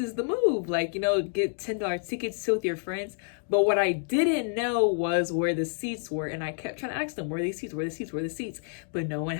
the move, like, you know, get $10 tickets, sit with your friends. But what I didn't know was where the seats were, and I kept trying to ask them, where are the seats, where are the seats, where are the seats, but no one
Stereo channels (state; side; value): silent; right; 59 dB below the other